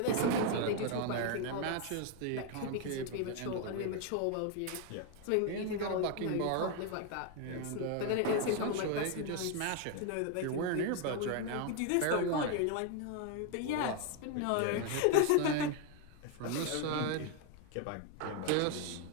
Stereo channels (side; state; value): both; different; correlation 0.01